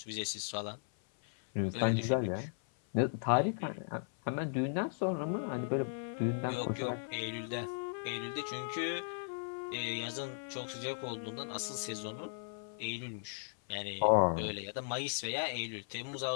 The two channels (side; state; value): right; silent; 53 dB below the other